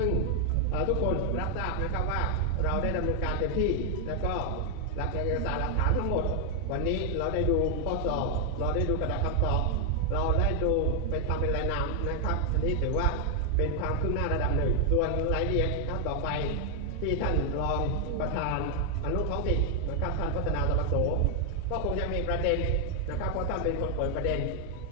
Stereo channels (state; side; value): different; both; correlation 0.00